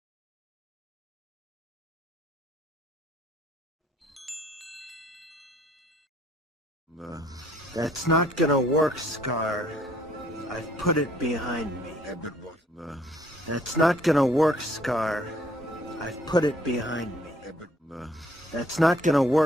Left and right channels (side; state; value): both; normal; correlation 0.62